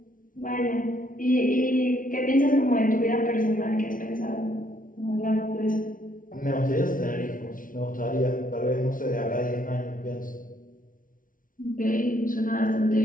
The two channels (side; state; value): right; late; 0.39 ms